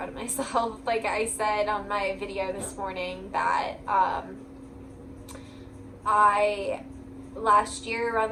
of myself. Like I said on my video this morning that I last year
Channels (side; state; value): both; identical; correlation 1.00